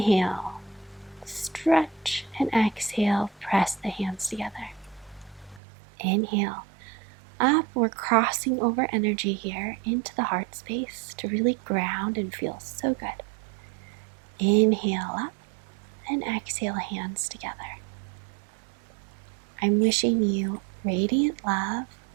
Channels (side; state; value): left; drops out; at 5.6 s